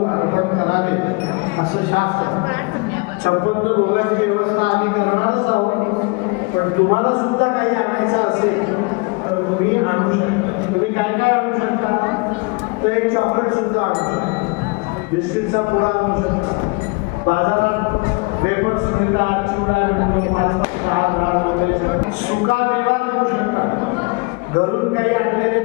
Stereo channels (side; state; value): right; quieter; 29.4 dB